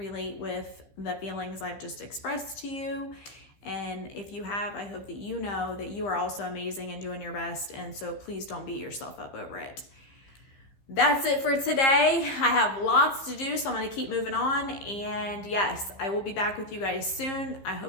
with the feelings I've just expressed to you. And if you have, I hope that you know that you are also amazing and doing your best. And so please don't beat yourself up over it. That's it for today. I have lots to do, so I'm going to keep moving on. And yes, I will be back with you guys soon. I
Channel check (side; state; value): right; late; 15 ms